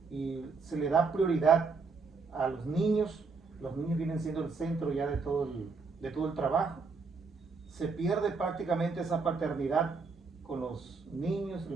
y se le da prioridad a los niños. Los niños vienen siendo el centro ya de todo el trabajo. Se pierde prácticamente esa paternidad con los niños.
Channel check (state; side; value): quieter; left; 4.5 dB